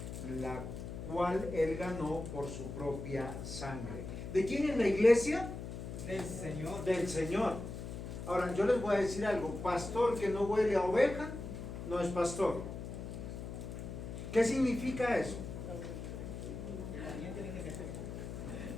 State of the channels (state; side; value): noise; left; hum, 7 dB below the sound